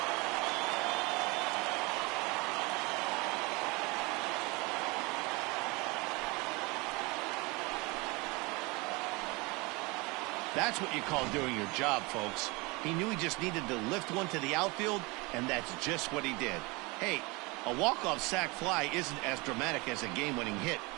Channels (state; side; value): quieter; left; 25.8 dB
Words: That's what you call doing your job, folks. He knew he just needed to lift one to the outfield, and that's just what he did. Hey, a walk-off sac fly isn't as dramatic as a game-winning hit,